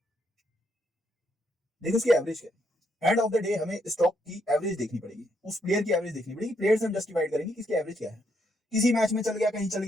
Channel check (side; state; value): both; normal; correlation 0.75